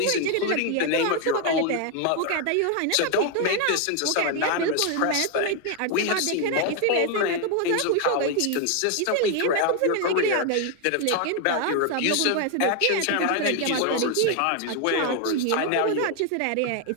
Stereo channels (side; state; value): both; different; correlation 0.01